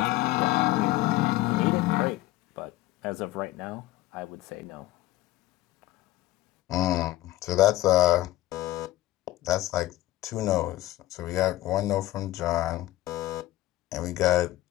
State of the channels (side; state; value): right; quieter; 16.4 dB